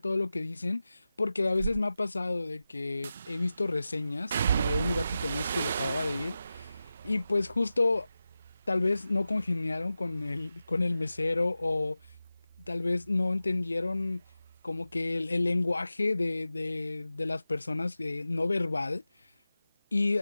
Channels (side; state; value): both; inverted; correlation -0.94